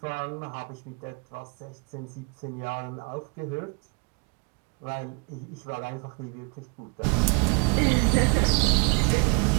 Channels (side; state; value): left; quieter; 34.1 dB